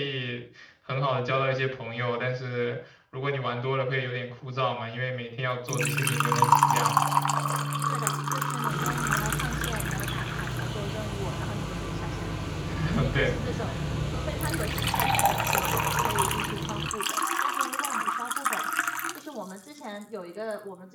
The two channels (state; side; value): identical; both; correlation 1.00